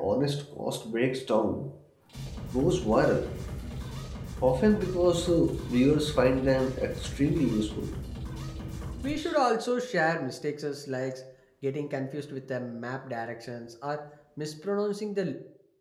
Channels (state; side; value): identical; both; correlation 1.00